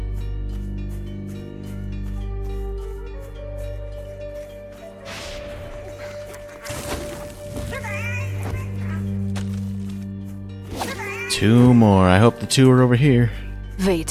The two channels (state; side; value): identical; both; correlation 1.00